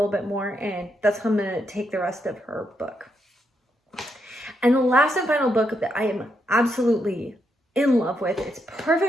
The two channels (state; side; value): normal; both; correlation 0.80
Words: bit more, and that's how I'm going to take the rest of her book. And the last and final book that I am absolutely in love with, it's